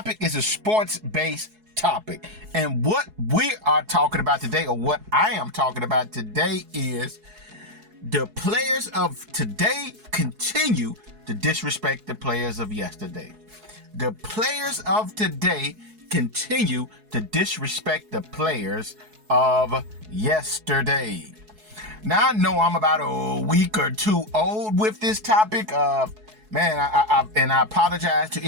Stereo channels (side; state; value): left; late; 4.7 ms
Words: is a sports-based topic. And what we are talking about today, or what I am talking about today, is the players of today continue to disrespect the players of yesterday. The players of today continue to disrespect the players of yesterday. Now, I know I'm about a week or two old with this topic. I apologize to